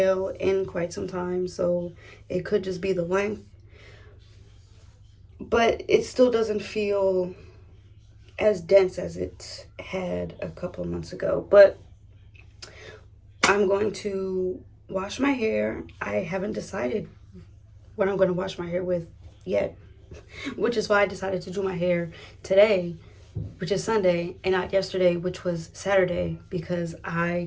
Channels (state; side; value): identical; both; correlation 1.00